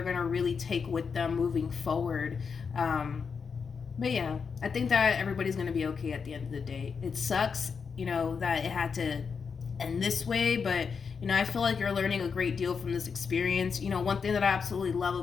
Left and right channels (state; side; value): quieter; right; 5.8 dB